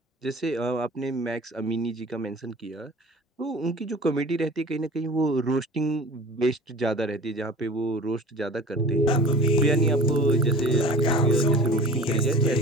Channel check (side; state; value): both; normal; correlation 0.42